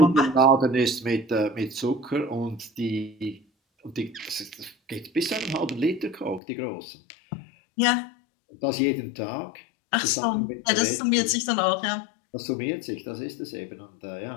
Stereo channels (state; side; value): drops out; right; at 6.4 s